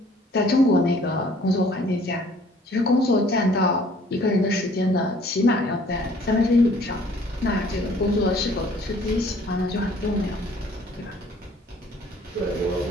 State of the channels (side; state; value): both; normal; correlation 0.56